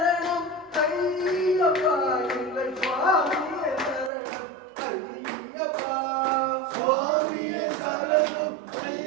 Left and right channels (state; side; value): drops out; left; at 4.1 s